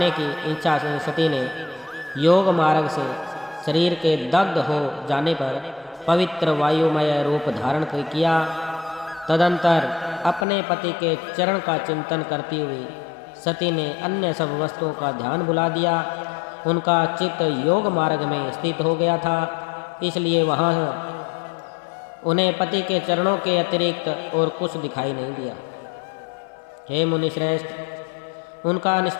की इच्छा से सती ने योग मार्ग से शरीर के दग्ध हो जाने पर पवित्र वायुमय रूप धारण किया। तदंतर अपने पति के चरण का चिंतन करती हुई सती ने अन्य सब वस्तुओं का ध्यान भुला दिया। उनका चित्त योग मार्ग में स्थित हो गया था, इसलिए वहाँ उन्हें पति के चरणों के अतिरिक्त और कुछ दिखाई नहीं दिया। हे मुनिश्रेष्ठ, उनका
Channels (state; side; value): drops out; right; at 10.5 s